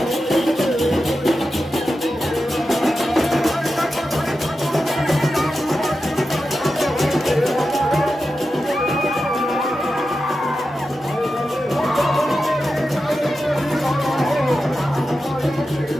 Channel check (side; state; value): both; normal; correlation 0.91